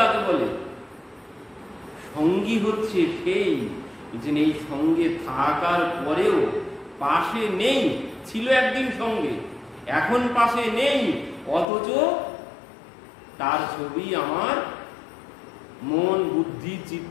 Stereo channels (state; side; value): drops out; right; at 11.7 s